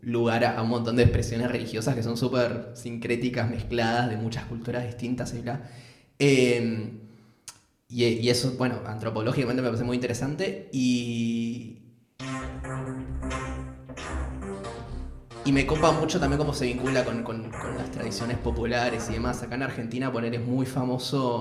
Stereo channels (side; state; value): both; identical; correlation 1.00